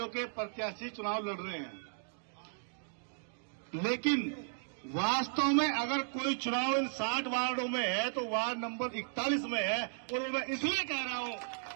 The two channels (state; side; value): silent; left; digital silence